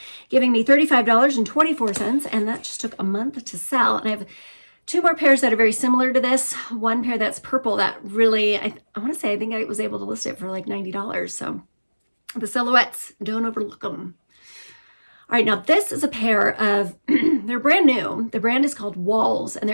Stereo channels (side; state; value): both; inverted; correlation -1.00